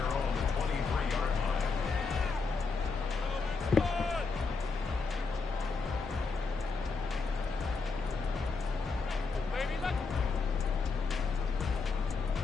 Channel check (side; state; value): right; quieter; 4.4 dB